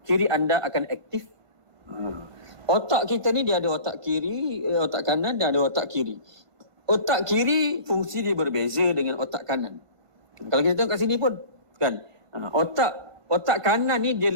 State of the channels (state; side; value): late; left; 1.5 ms